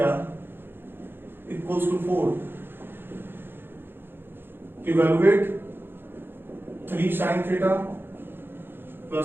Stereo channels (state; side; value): late; left; 0.10 ms